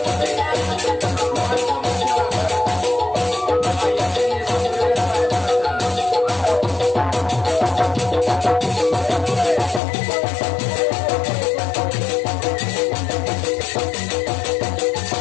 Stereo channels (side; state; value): right; drops out; at 9.8 s